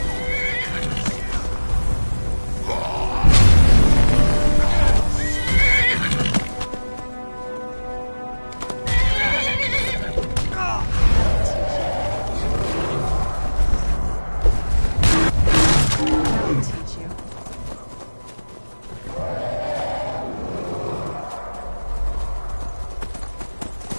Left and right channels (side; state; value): both; inverted; correlation -1.00